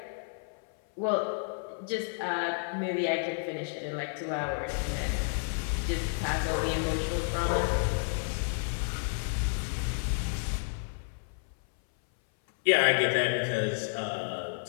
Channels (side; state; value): right; silent; 57 dB below the other